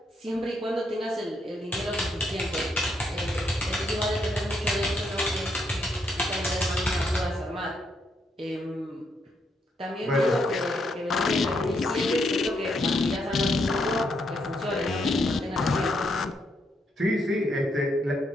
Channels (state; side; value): normal; both; correlation 0.77